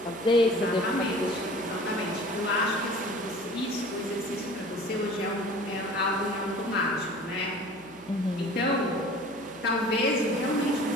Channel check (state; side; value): noise; right; hum, 26 dB below the sound